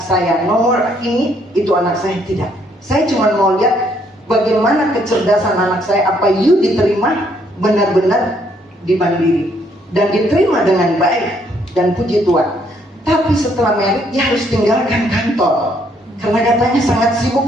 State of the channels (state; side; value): normal; both; correlation 0.69